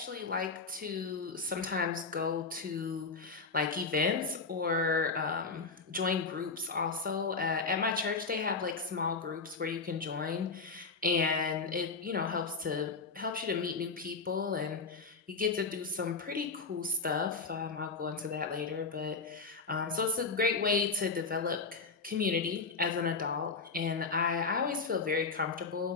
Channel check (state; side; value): quieter; right; 4.4 dB